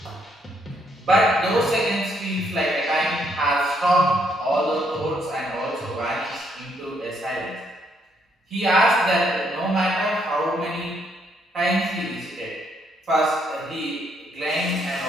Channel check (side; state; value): both; normal; correlation 0.72